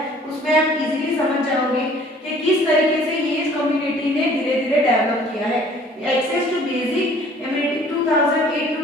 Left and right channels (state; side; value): normal; both; correlation 0.54